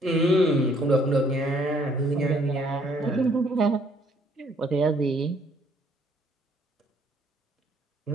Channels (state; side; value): normal; both; correlation 0.64